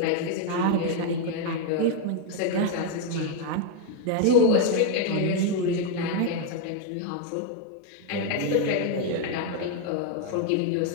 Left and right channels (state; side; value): different; both; correlation 0.01